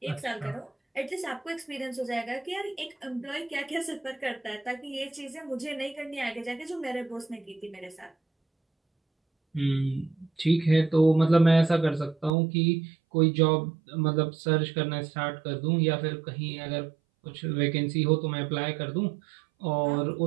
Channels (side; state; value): left; drops out; at 12.3 s